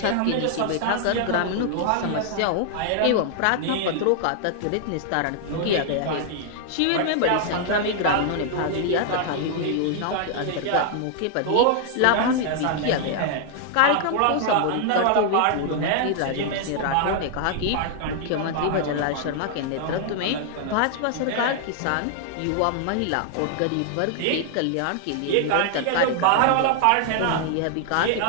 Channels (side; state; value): both; different; correlation -0.01